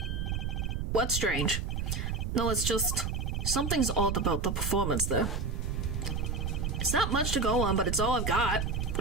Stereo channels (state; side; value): noise; right; rumble, 1 dB below the sound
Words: What's strange? No, it's just... something's odd about the performance there. It's not much to go on, but it's all I've got.